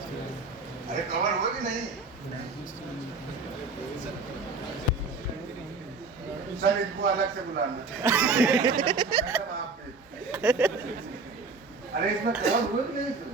अरे कवर हुआ कि नहीं? सर इनको अलग से बुलाना। अरे इसमें कवर हुआ कि नहीं?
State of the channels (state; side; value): quieter; left; 4.0 dB